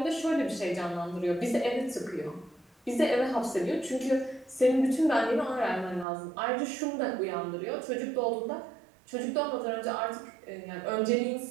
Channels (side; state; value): left; drops out; at 6.1 s